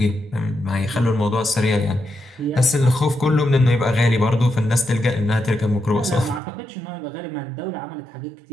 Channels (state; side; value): drops out; left; at 6.4 s